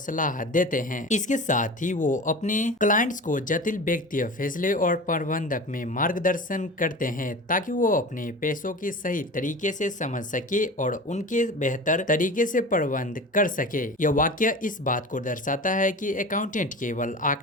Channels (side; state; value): both; normal; correlation 0.34